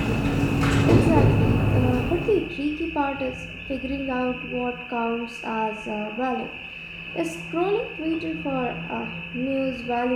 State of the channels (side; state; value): both; identical; correlation 1.00